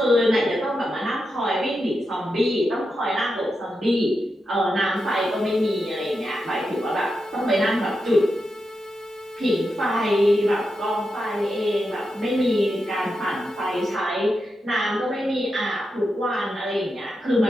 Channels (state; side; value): normal; both; correlation 0.87